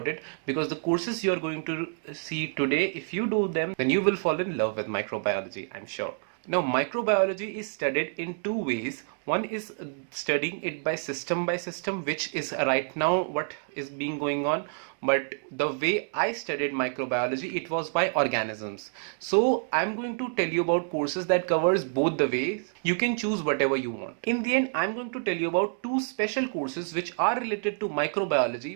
it because the courses you are going to see today, if you do them, then you will fall in love with microbiology, I'm sure. Now, microbiology is studied in two ways. One is studying it by system, which is right now what is being going on. But the way I studied microbiology, it was by organisms. So I'm going to tell you about courses that covers both the ways. You can choose whatever you want. In the end, I'm going to tell you about two special courses which are related to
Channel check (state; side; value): silent; left; 59 dB below the other